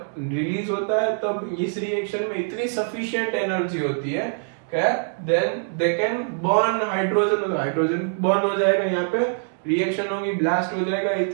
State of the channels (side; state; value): left; silent; digital silence